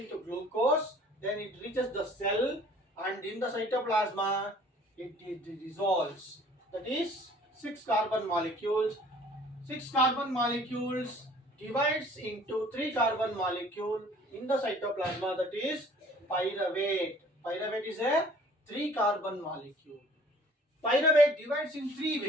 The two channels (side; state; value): both; normal; correlation 0.53